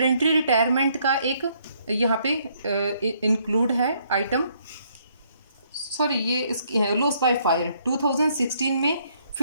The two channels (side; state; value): both; inverted; correlation -0.69